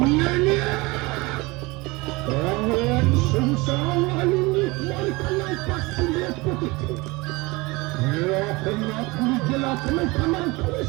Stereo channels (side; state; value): left; quieter; 23.7 dB